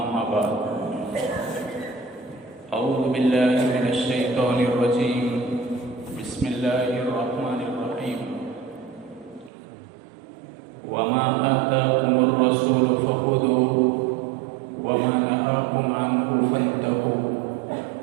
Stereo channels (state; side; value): drops out; left; at 9.5 s